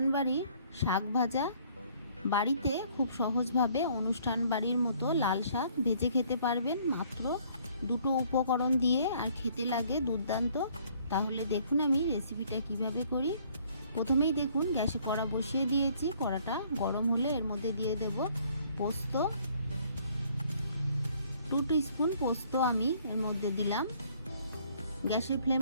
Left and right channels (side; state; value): both; inverted; correlation -0.61